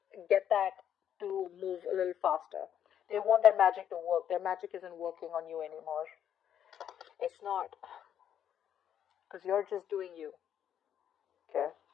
get that to move a little faster. They want their magic to work. Their magic isn't working on you anymore. It's not. Because you're just doing you. Okay?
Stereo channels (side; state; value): right; quieter; 9.6 dB